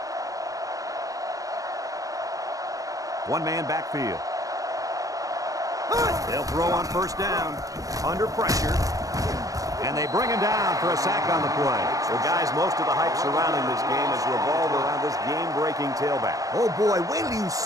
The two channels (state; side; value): late; left; 0.17 ms